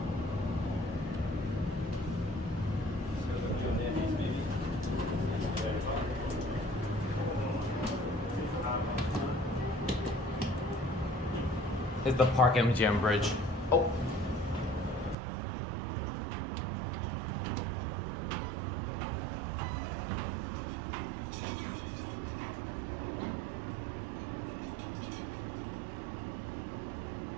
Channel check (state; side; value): drops out; left; at 15.2 s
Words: Is the Park MGM bridge. Oh.